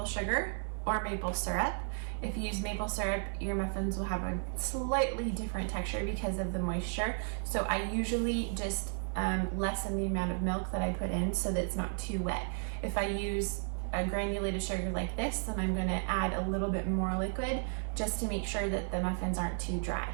sugar or maple syrup. If you use maple syrup, your muffins will have a slightly different texture because of the moisture. So I usually just lessen the amount of milk that I put in so that it's not too wet. If I use a granulated sugar like this, then I'm going to add a little bit more liquid just to make sure that the muffins aren't too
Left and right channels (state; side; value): silent; left; 55 dB below the other